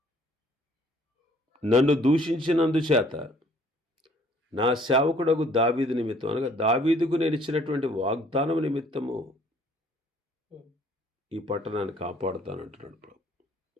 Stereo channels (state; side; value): normal; both; correlation 0.59